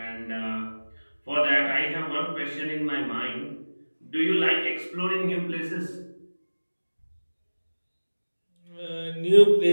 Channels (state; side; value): inverted; both; correlation -1.00